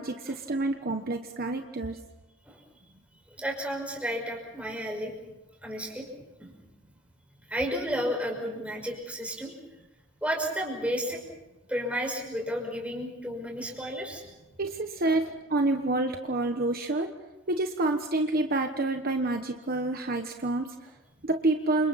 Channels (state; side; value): normal; both; correlation 0.43